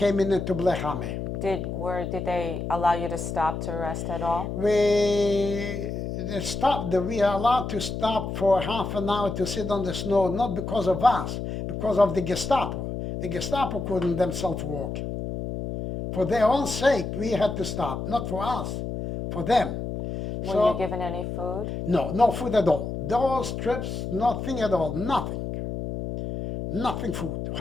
into Blechame. Did they allow you to stop to rest at all? We are allowed to stop for half an hour to sit on the snow, not because of us, because of the Gestapo. The Gestapo couldn't themselves walk. For their own sake, we had to stop, not for us, for them. Were you given any food? No, no food at all. Those trips, nothing at all, nothing. Nothing food.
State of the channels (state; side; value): noise; left; hum, 5 dB below the sound